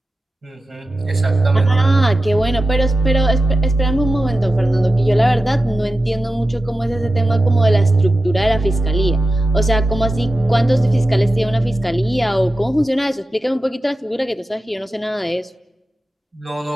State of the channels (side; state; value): both; normal; correlation 0.93